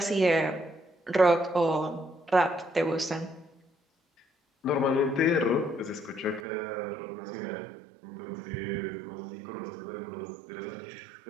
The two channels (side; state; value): left; drops out; at 6.4 s